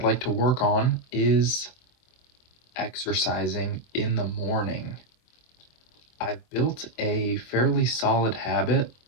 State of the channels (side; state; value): right; late; 24 ms